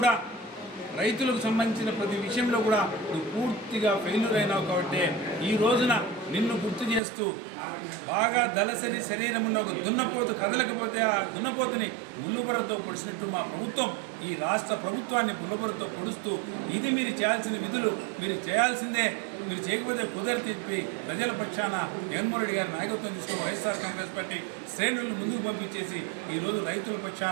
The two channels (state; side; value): drops out; left; at 7.0 s